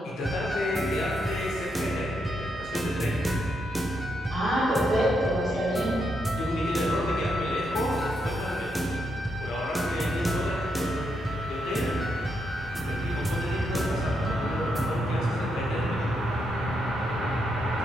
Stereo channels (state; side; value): normal; both; correlation 0.80